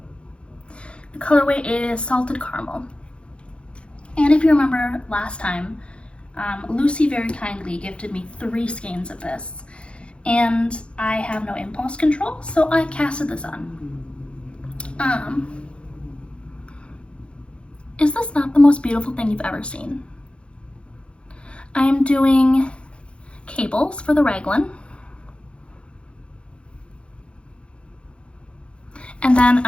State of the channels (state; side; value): late; right; 0.058 ms